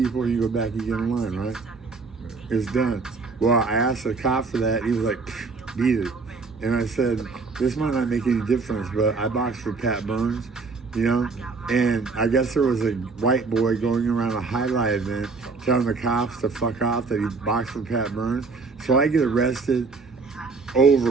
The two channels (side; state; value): left; quieter; 4.3 dB